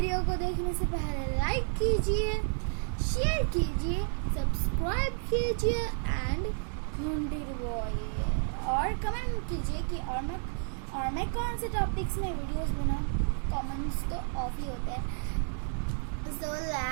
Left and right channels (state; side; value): silent; left; 57 dB below the other